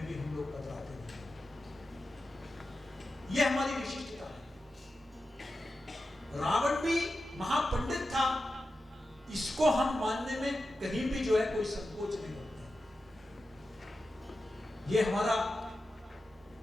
भी हम लोग कतराते हैं। यह हमारी विशिष्टता है। रावण भी महापंडित था, इसको हम मानने में कहीं भी जो है कोई संकोच नहीं करते। ये हमारा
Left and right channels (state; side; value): normal; both; correlation 0.92